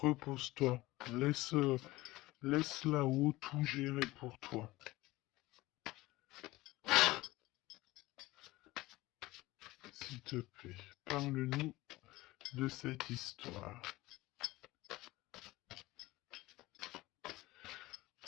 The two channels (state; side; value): quieter; right; 19.1 dB